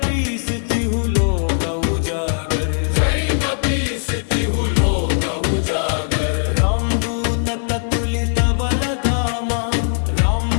तिहु लोक उजागर जय कपीस तिहु लोक उजागर रामदूत ततुलित बलधामा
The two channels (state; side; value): silent; right; digital silence